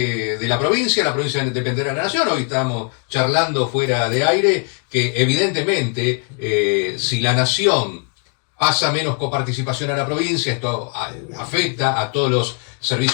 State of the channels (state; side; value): quieter; right; 38.4 dB